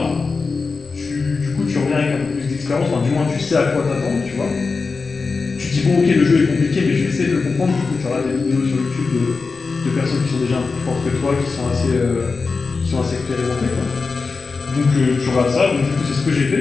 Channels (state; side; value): quieter; right; 4.4 dB